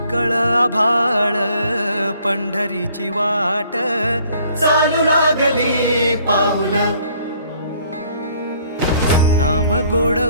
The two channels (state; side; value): inverted; both; correlation -0.61